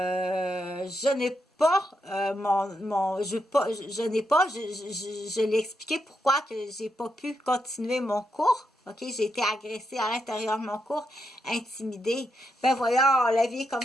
n'ai pas je l'ai expliqué pourquoi que j'ai pas pu continuer mon cours. OK, j'ai été agressée à l'intérieur de mon cours, intimidée. Ben voyons, la vie est comme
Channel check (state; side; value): normal; both; correlation 0.82